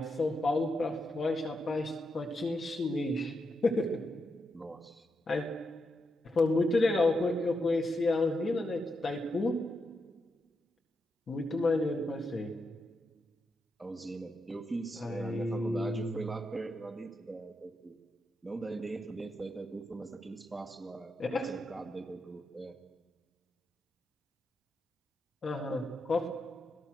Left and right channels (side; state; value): both; normal; correlation 0.84